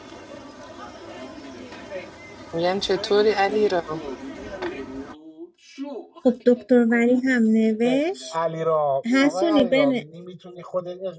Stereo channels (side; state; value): both; identical; correlation 1.00